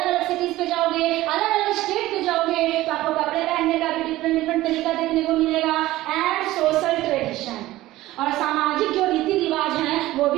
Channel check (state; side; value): quieter; left; 16.6 dB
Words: अलग सिटीज पे जाओगे, अलग अलग स्टेट पे जाओगे तो आपको कपड़े पहनने का भी डिफरेंट डिफरेंट तरीका देखने को मिलेगा। एंड सोशल ट्रेडिशन, और सामाजिक जो रीति रिवाज हैं वो